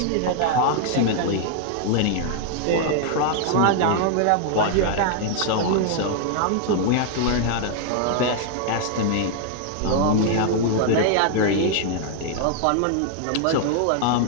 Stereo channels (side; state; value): both; different; correlation 0.00